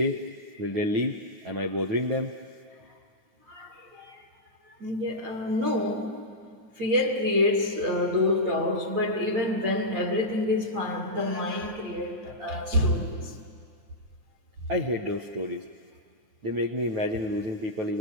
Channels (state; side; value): late; left; 9.4 ms